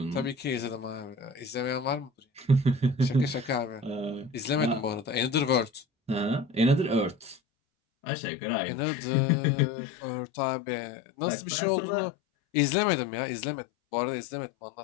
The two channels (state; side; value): drops out; right; at 7.4 s